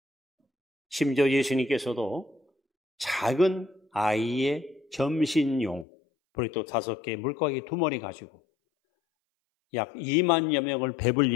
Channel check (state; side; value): drops out; right; at 5.9 s